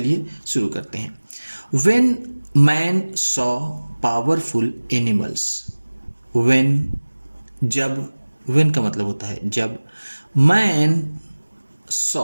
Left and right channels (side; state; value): both; inverted; correlation -1.00